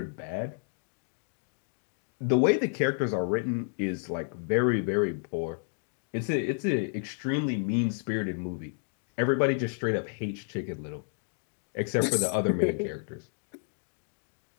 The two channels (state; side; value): silent; right; digital silence